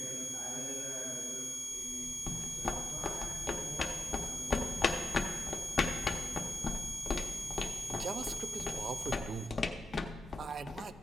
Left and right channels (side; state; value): both; normal; correlation 0.89